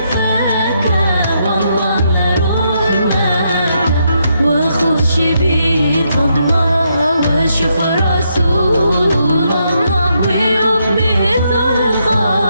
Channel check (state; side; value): inverted; both; correlation -0.78